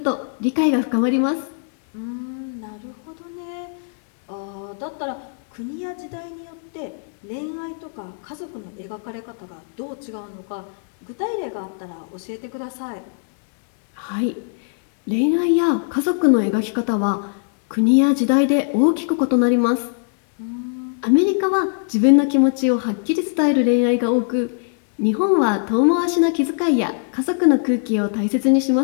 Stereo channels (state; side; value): silent; right; digital silence